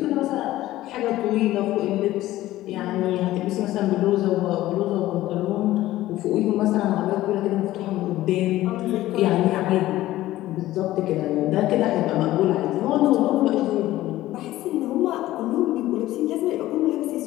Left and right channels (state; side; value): quieter; right; 15.5 dB